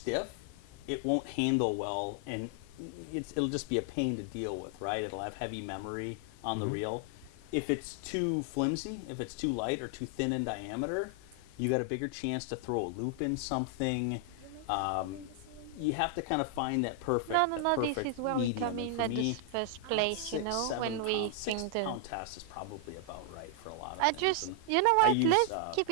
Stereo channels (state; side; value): different; both; correlation 0.00